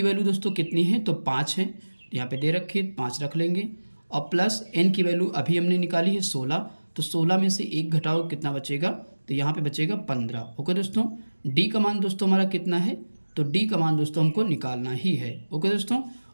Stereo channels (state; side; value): inverted; both; correlation -1.00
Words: वैल्यू दोस्तों कितनी है, तो 5 है, तो यहाँ पे दे रखी है 5 रख लेंगे, और प्लस n की वैल्यू अभी हमने निकाली है 16, तो 16 में से 1 घटाओ कितना बचेगा, तो यहाँ पे बचेगा 15। ओके दोस्तों, d का मान दोस्तों हमारा कितना है, तो d का मान दोस्तों हमको निकालना ही है। ओके दोस्तों,